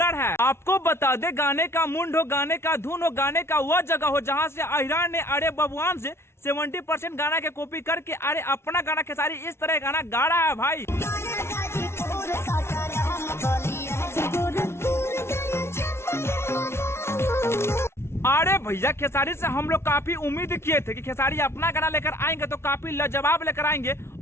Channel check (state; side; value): late; right; 0.12 ms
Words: है। आपको बता दे गाने का मुंड हो, गाने का धुन हो, गाने का वह जगह हो जहां से अहिरान ने अरे बबुआन से 70% गाना के कॉपी करके अरे अपना गाना खेसारी इस तरह गाना गा रहा है भाई। अरे भैया खेसारी से हम लोग काफी उम्मीद किए थे कि खेसारी अपना गाना लेकर आएंगे तो काफी लाजवाब लेकर आएंगे